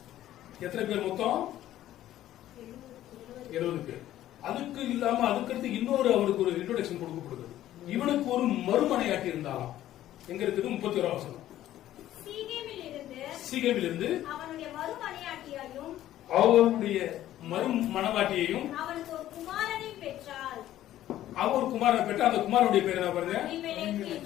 எத்தனை பேர் மொத்தம்? 70 பேர். அதுக்கு இல்லாம அதுக்கடுத்து இன்னொரு அவனுக்கு ஒரு இன்ட்ரோடக்ஷன் கொடுக்கப்படுது. இவனுக்கு ஒரு மறுமனையாட்டி இருந்தாலும் எங்க இருக்குது? 31ஆம் வசனம். சீகேமில் இருந்து அவனுடைய மறுமனையாட்டியையும் அவருடைய மறுமணவாட்டியையும் அவனுக்கு ஒரு குமாரனையும் பெற்றாள். அவர் குமாரனை பெற்ற அந்த குமாரனுடைய பேர் என்ன பாருங்க?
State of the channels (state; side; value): quieter; right; 13.2 dB